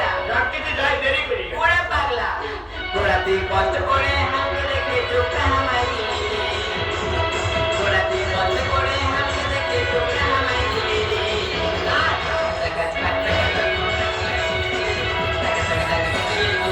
ডাকতে যাই দেরি করি। ওরা পাগলা, ওরা তুই কষ্ট করে আমাকে দেখে চোখটা হামাই দিলে, ওরা তুই কষ্ট করে আমাকে দেখে চোখটা হামাই দিলে।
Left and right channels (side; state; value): both; identical; correlation 1.00